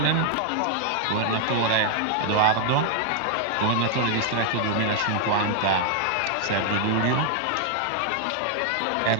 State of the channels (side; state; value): both; different; correlation 0.00